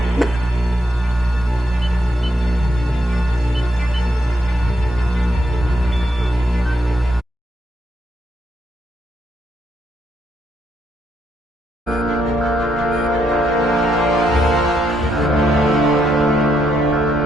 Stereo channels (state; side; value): normal; both; correlation 0.78